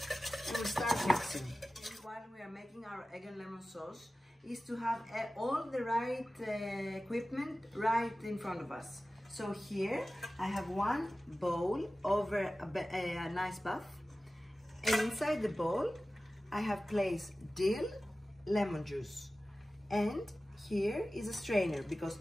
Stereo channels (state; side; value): normal; both; correlation 0.96